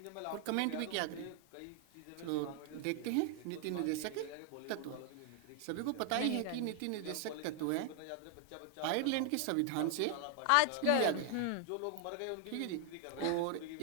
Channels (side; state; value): both; different; correlation 0.00